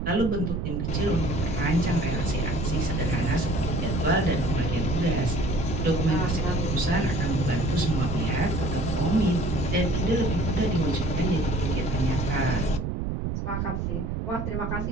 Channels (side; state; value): right; noise; rumble, 1 dB below the sound